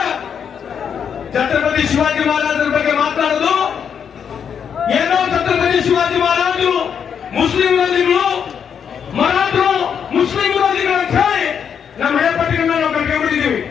ಛತ್ರಪತಿ ಶಿವಾಜಿ ಮಹಾರಾಜರ ಬಗ್ಗೆ ಮಾತಾಡೋದು ಏನೋ, ಛತ್ರಪತಿ ಶಿವಾಜಿ ಮಹಾರಾಜರು ಮುಸ್ಲಿಂ ವಿರೋಧಿಗಳು, ಮರಾಠರು ಮುಸ್ಲಿಂ ವಿರೋಧಿಗಳು ಅಂತ ಹೇಳಿ ನಮ್ಮ ಹಳೆಪಟ್ಟಿಗಳನ್ನ ನಾವು ಕಟ್ಕೊಂಡ್ಬಿಟ್ಟಿದ್ದೀವಿ.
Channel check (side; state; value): right; quieter; 7.6 dB